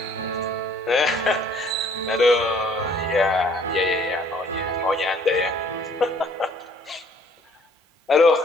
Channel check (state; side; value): normal; both; correlation 0.59